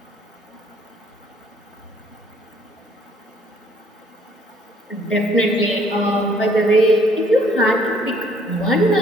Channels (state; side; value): normal; both; correlation 0.62